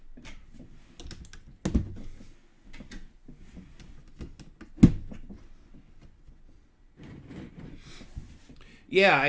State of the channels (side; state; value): both; identical; correlation 1.00